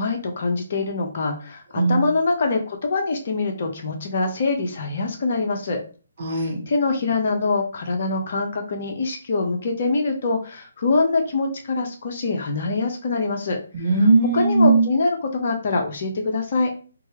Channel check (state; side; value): inverted; both; correlation -0.75